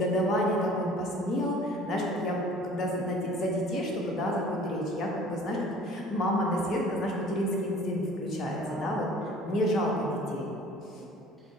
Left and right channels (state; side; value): normal; both; correlation 0.49